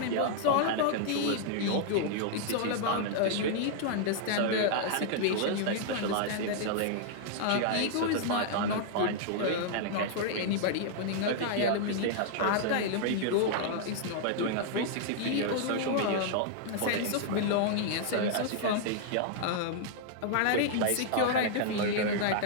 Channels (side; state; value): both; different; correlation -0.01